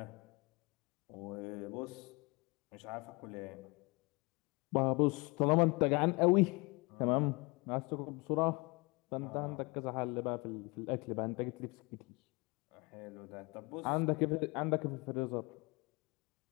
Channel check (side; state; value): right; quieter; 27.3 dB